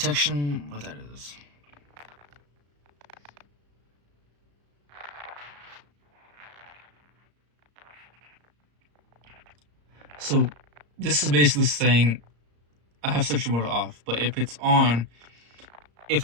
what that is. So, this is basically saying I have Sentry mode off, but if it's on, if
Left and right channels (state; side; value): late; left; 34 ms